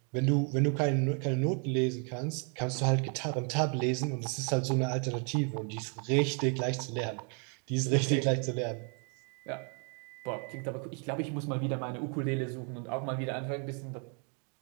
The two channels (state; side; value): quieter; left; 39.1 dB